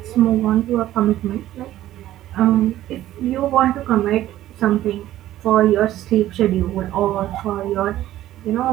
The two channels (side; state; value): left; quieter; 13.8 dB